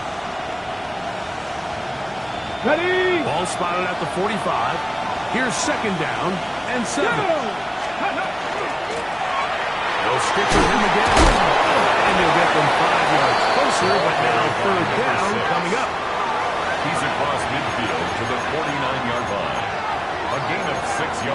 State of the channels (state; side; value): identical; both; correlation 1.00